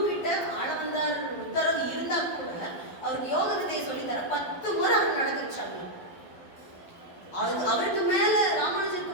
கிட்ட ஆளவந்தார் உத்தரவு இருந்தா கூட அவருக்கு யோக வித்தையை சொல்லித்தர 10 முறை அவர் நடக்க வச்சாங்க. அவருக்கு மேல, ராமானுஜருக்கு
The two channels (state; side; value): late; right; 12 ms